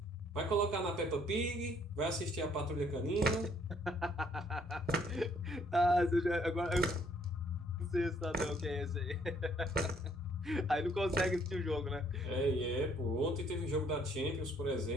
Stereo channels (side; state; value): both; normal; correlation 0.65